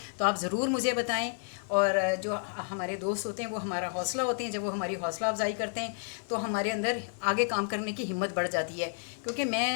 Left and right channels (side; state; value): right; silent; 57 dB below the other